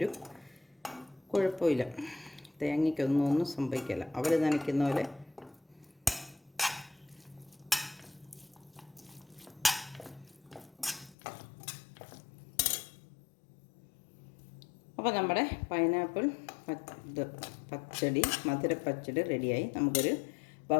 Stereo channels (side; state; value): right; drops out; at 11.2 s